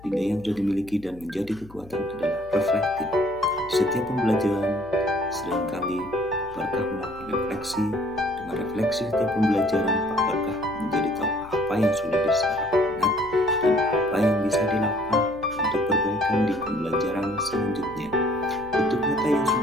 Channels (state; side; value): noise; left; hum, 21 dB below the sound